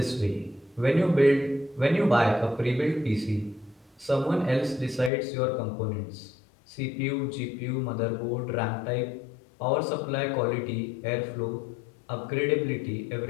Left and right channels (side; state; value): right; drops out; at 5.1 s